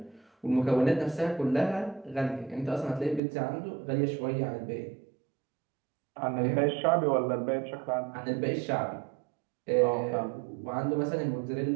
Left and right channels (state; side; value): drops out; left; at 3.2 s